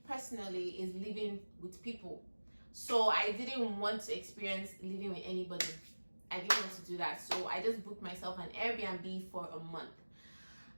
personally is living with people. So I didn't want to experience living with anybody. I didn't want to do that. So I just booked myself an Airbnb for a month.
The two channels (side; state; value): both; inverted; correlation -1.00